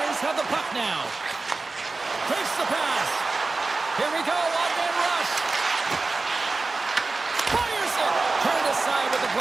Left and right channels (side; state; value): left; quieter; 3.6 dB